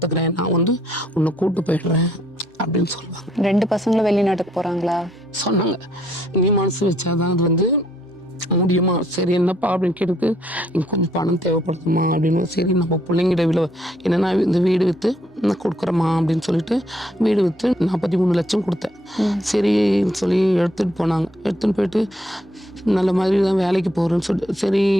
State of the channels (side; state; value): both; normal; correlation 0.69